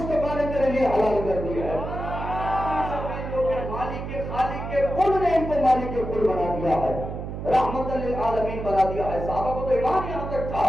نے تیرے لیے حلال کر دیا ہے۔ مالک کے خالق کے کل نے ان کو مالک کے کل بنا دیا ہے، رحمت للعالمین بنا دیا ہے۔ صحابہ کو تو ایمان یہاں تک تھا،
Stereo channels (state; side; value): noise; right; hum, 7 dB below the sound